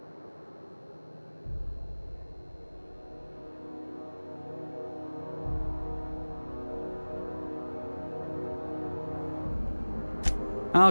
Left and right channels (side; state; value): both; inverted; correlation -1.00